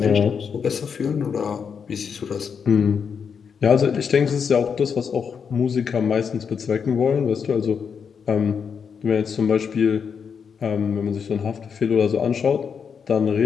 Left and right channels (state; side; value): quieter; right; 6.6 dB